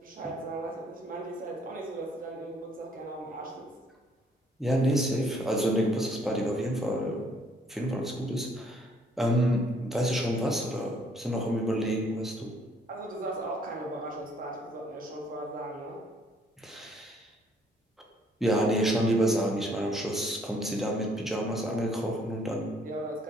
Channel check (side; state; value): both; normal; correlation 0.64